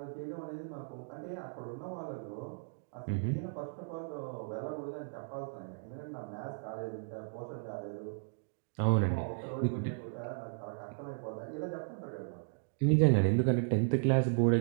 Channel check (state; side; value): silent; left; digital silence